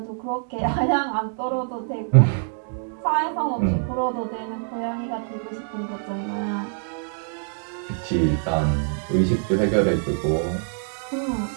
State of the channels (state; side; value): silent; left; 62 dB below the other